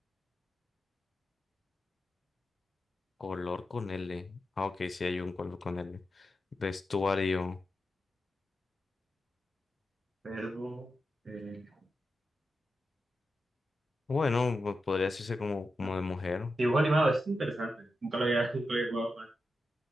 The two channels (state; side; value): normal; both; correlation 0.89